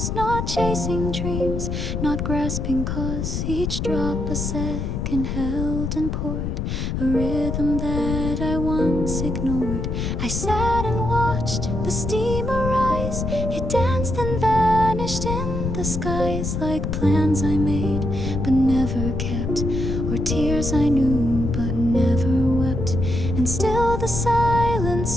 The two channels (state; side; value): noise; left; rumble, 2 dB below the sound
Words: not chasing dreams, not grasping cause. Each drop a second held and poured, a rhythm that I once ignored. I sat and watched the steamer rise. It danced and vanished in the skies, like plans I made but never kept, or tears I knew but never wept. And still the silence